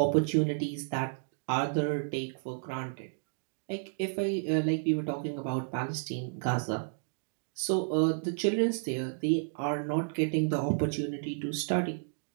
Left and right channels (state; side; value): silent; left; digital silence